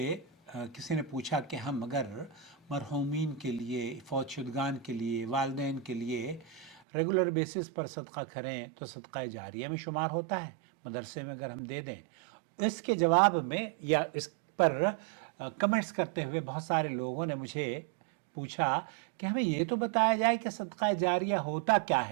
किसी ने पूछा कि हम अगर मरहूमीन के लिए, फ़ौतशुदगान के लिए, वालिदैन के लिए रेगुलर बेसिस पर सदका करें तो सदका जारिया में शुमार होता है, मदरसे में अगर हम दे दें। इसके जवाब में या इस पर कमेंट्स करते हुए बहुत सारे लोगों ने मुझे पूछा कि हमें ये तो बताया जाए कि सदका जारिया होता क्या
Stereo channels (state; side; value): drops out; left; at 6.8 s